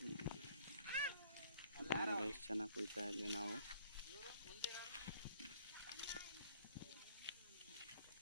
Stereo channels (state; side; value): inverted; both; correlation -0.57